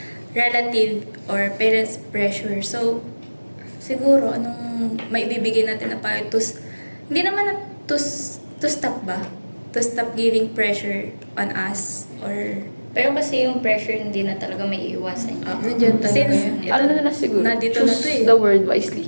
relative or parents pressure. So siguro anong maibibigay natin na payo hindi naman na to stop ba? To stop giving pressure on us or Pero kasi yung pressure hindi na talaga may iiwasan. Nandiyan talaga since yun. ito, Ano na siguro? nandito na Choose to eh. the word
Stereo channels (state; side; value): inverted; both; correlation -1.00